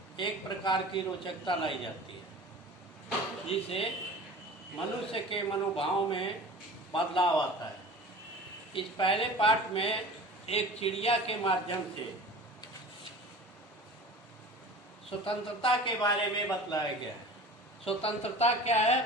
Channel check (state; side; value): normal; both; correlation 0.39